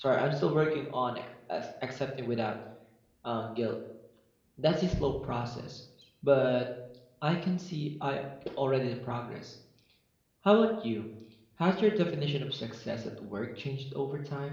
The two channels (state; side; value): identical; both; correlation 1.00